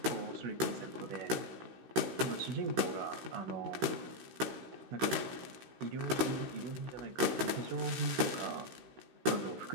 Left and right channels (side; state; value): left; late; 16 ms